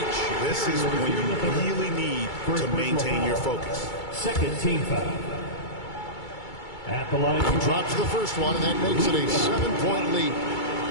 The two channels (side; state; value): right; late; 2.3 ms